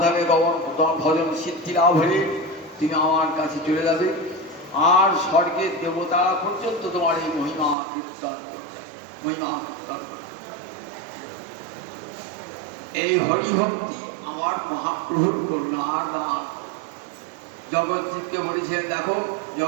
তোমার ভজন সিদ্ধি লাভ হলে তুমি আমার কাছে চলে যাবে, আর স্বর্গের দেবতা পর্যন্ত তোমার এই মহিমা কীর্তন করতে, মহিমা কীর্তন করতে। এই হরিভক্তি আমার মহাপ্রভুর করুণার দান। জগৎকে বলেছেন, দেখো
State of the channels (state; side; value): drops out; left; at 7.8 s